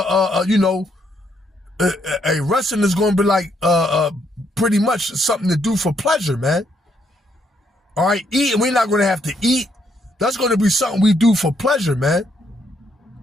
resting is gonna be like pretty much something to do for pleasure, man. All right, eating, we're not going to have to eat. That's going to be something we do for pleasure, man.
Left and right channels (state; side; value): normal; both; correlation 0.73